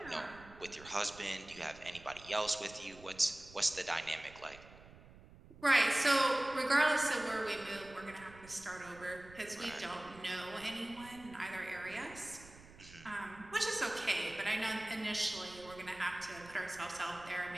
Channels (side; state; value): right; noise; rumble, 20 dB below the sound